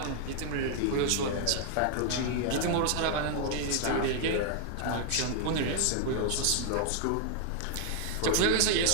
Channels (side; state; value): both; different; correlation 0.00